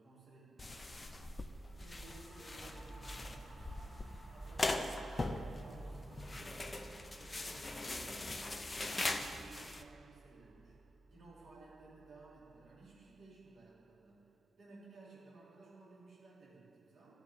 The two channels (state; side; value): normal; both; correlation 0.93